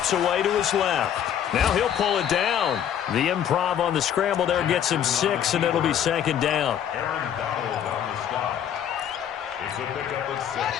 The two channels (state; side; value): quieter; right; 9.6 dB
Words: away to his left. Now he'll pull it down. The improv on the scramble there gets him 6, and it'll be 2nd down.